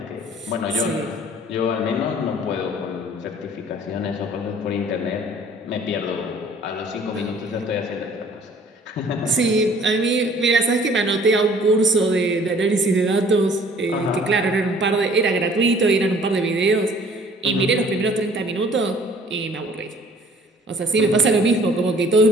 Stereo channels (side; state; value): both; normal; correlation 0.54